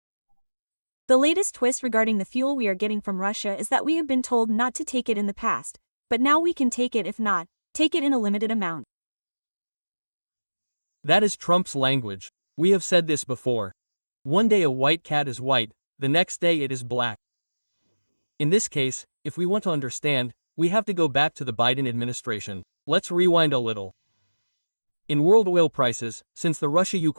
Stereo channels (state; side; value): inverted; both; correlation -1.00